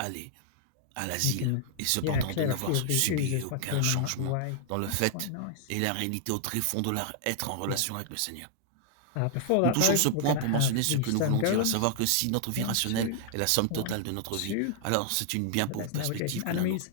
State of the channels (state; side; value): different; both; correlation -0.01